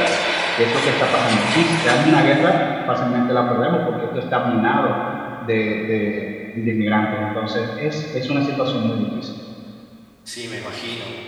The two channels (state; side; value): identical; both; correlation 1.00